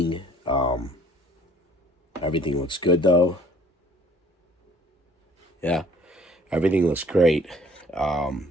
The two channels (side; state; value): both; normal; correlation 0.56